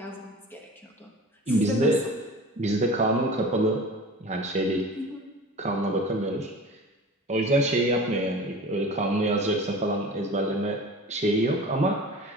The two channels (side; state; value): both; normal; correlation 0.38